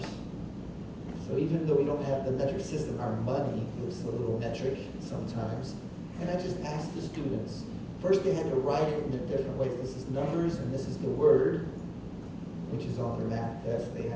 So even though we don't have the metric system, our money looks a little metric sometimes. And I just asked the students. First they had to write it in the different ways. This is numbers and this is the word, which is on their math test. They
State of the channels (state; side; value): identical; both; correlation 1.00